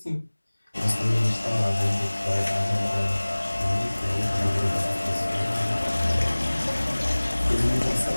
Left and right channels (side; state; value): both; inverted; correlation -1.00